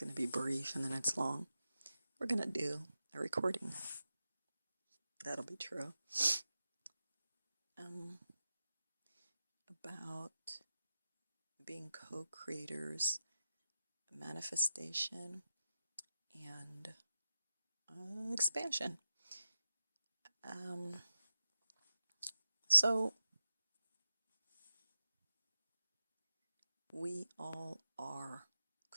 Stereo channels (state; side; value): inverted; both; correlation -0.91